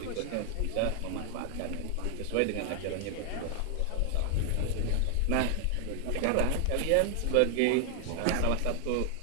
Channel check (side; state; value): both; different; correlation 0.00